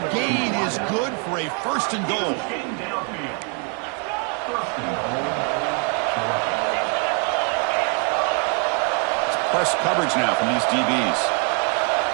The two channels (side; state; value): left; quieter; 37.3 dB